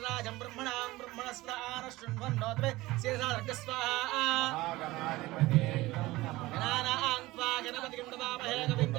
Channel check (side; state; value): left; quieter; 19.1 dB